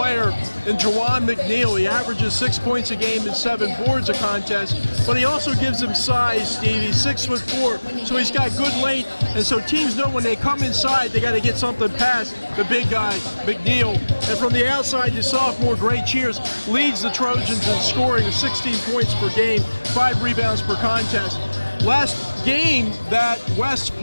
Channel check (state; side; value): inverted; both; correlation -1.00